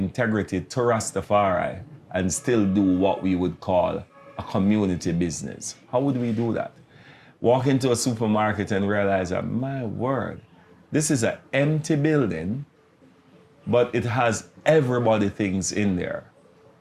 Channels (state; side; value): identical; both; correlation 1.00